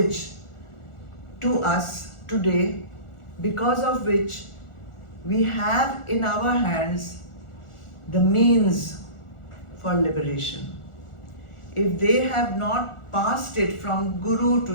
to us today, because of which we have in our hands the means for liberation. If they have not passed it from Guru to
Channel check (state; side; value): late; right; 1.4 ms